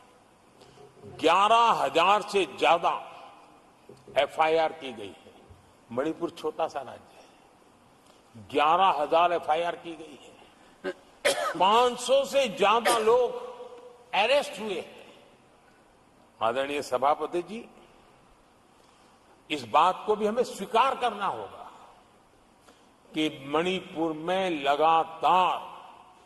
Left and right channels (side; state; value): both; identical; correlation 1.00